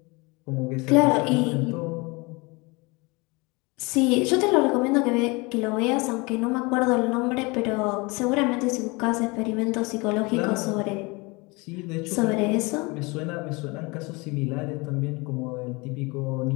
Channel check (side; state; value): right; quieter; 26.4 dB